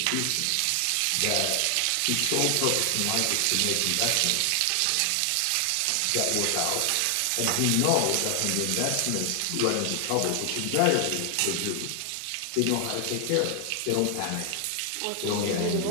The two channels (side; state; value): both; different; correlation 0.00